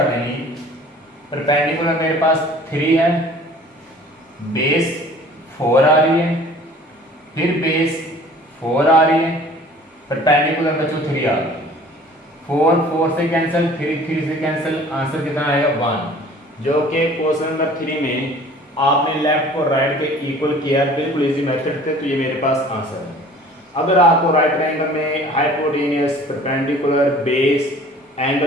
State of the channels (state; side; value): normal; both; correlation 0.48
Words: देंगे, परपेंडिकुलर मेरे पास 3 है, बेस 4 आ रही है, फिर बेस 4 आ रही है, परपेंडिकुलर बच्चों 3 आ रही है, 4 से कैंसिल, 3 से कैंसिल, आंसर कितना आएगा 1, जो कि क्वेश्चन नंबर 3 में आपने लेफ्ट को राइट के इक्वल किया, बिल्कुल इजी मेथड थे, तो ये मेरे पास आंसर है। अगर आपको राइट ट्रायंगल में हाइपोटेन्यूज, परपेंडिकुलर, बेस,